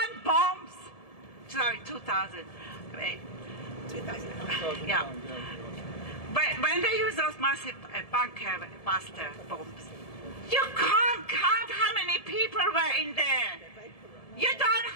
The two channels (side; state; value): right; late; 1.7 ms